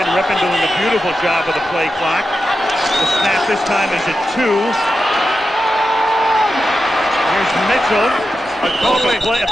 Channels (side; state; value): both; normal; correlation 0.89